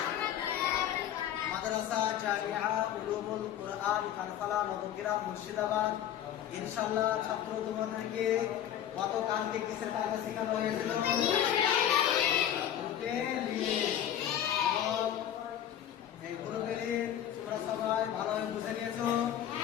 মাদ্রাসা জামিয়া উলুমুল কুরআন কানফালা নবগ্রাম মুর্শিদাবাদ। ইনশাআল্লাহ ছাত্র তোমাদেরকে গতকালকে কিসের কায়দা শেখানো হয়েছিল? এই গ্রুপের তোমরা সবাই ভালোভাবে বুঝে নিয়েছো।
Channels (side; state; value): right; quieter; 10.5 dB